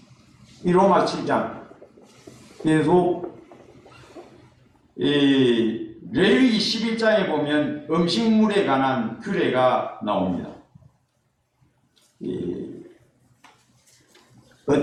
이 로마 7장. 그래서 이 레위기 11장에 보면 음식물에 관한 규례가 나옵니다.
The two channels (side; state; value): both; identical; correlation 1.00